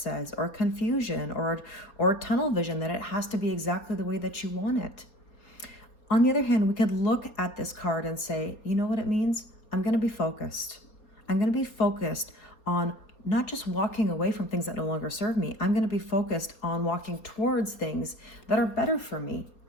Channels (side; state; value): right; late; 4.3 ms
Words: or confusion, or tunnel vision, that it has to be exactly the way that you want it. On the other hand, we could look at this card and say, you know what it means? I'm going to be focused. I'm going to be focused on not just walking away from things that no longer serve me. I'm going to be focused on walking towards things that are better for me.